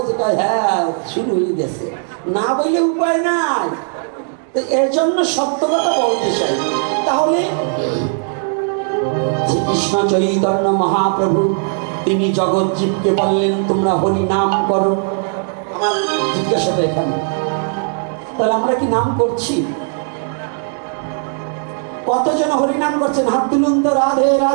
যেটা হ্যাঁ শুরু হয়ে গেছে, না বললে উপায় নাই। তো এর জন্য সত্য কথা বলতে চাই। তাহলে শ্রীকৃষ্ণ চৈতন্য মহাপ্রভু তিনি জগৎজীবকে বললেন তোমরা হরি নাম করো। আমার জিজ্ঞাসাটা এখানে, তাহলে আমরা কি নাম করছি? কতজন হরি নাম করছেন? হাত তুলুন তো। রাধে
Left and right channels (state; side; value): silent; left; 55 dB below the other